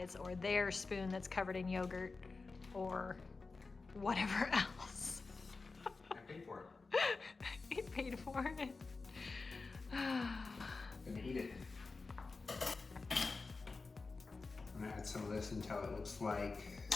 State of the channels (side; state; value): right; quieter; 4.0 dB